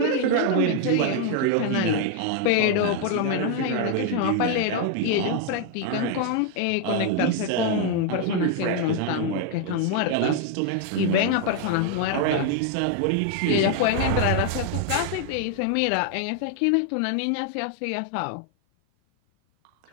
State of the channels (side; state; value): both; different; correlation 0.00